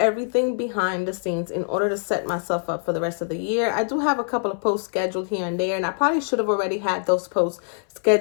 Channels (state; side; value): silent; right; 59 dB below the other